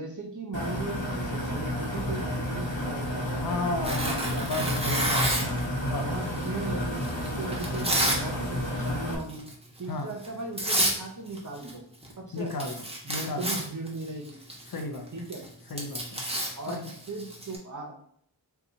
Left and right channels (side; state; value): both; normal; correlation 0.21